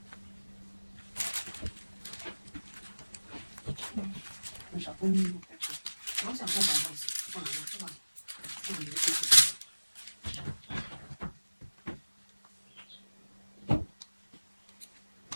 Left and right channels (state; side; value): inverted; both; correlation -1.00